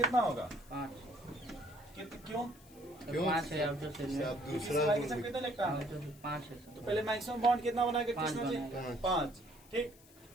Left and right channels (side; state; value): left; noise; hiss, 24 dB below the sound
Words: होगा? 5 क्यों? क्यों? 5 है आउटर सेल में। आप दूसरा दूसरा कितना लगता है? आउटर सेल 5 है तो सर। पहले मैक्सिमम बॉन्ड कितना बनाएगा? 5 किसने जी? बनाएगा। 5। ठीक।